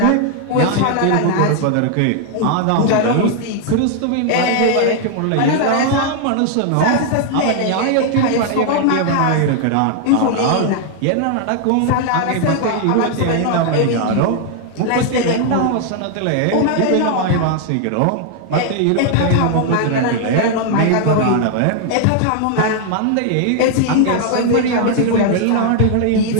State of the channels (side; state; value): both; different; correlation 0.00